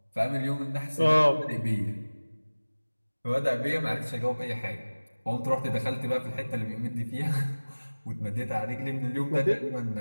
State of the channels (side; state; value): both; inverted; correlation -1.00